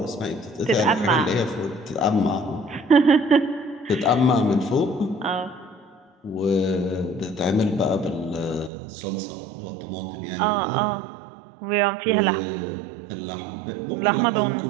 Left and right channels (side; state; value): left; drops out; at 8.7 s